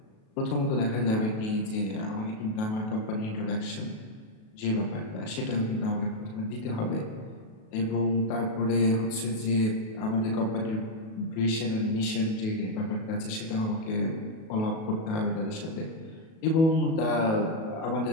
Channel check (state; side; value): late; right; 37 ms